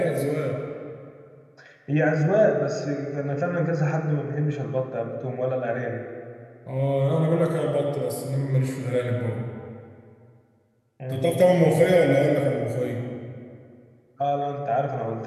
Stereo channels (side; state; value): both; identical; correlation 1.00